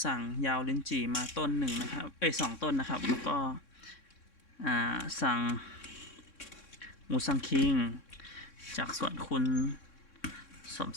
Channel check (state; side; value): late; right; 3.6 ms